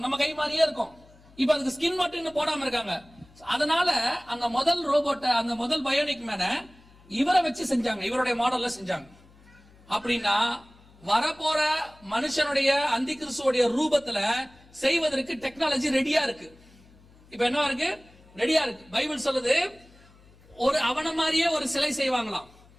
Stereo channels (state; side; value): noise; left; hum, 26 dB below the sound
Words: நம்ம கை மாதிரியே இருக்கும். இப்ப அதுக்கு ஸ்கின் மட்டும் இன்னும் போடாம இருக்காங்க. அதனால அந்த முதல் ரோபோட்டை, அந்த முதல் பயோனிக் மேனை இவரை வச்சு செஞ்சாங்க, இவருடைய மாடல்ல செஞ்சாங்க. அப்படின்னா வரப்போற மனுஷனுடைய அந்தி கிறிஸ்துவோடைய ரூபத்துல செய்வதற்கு டெக்னாலஜி ரெடியா இருக்கு. இப்ப என்ன இருக்கு? ரெடியா இருக்கு. பைபிள் சொல்லுது, ஒரு அவன மாதிரியே ஒரு சிலை செய்வாங்களாம்,